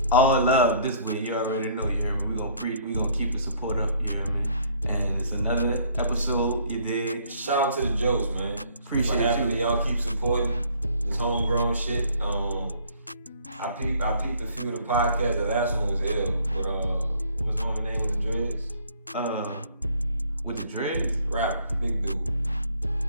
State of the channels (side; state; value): both; inverted; correlation -0.59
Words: All love this way, you already know, you hear me? We gonna keep the support up, you hear me? And it's another episode, you dig? Shout out to the Joce, man. Appreciate you. Happy y'all keep supporting this homegrown shit. I peeped a few of the podcasts. The last one was ill. But what's the name of the dreads? With the dreads? Rapper, big dude.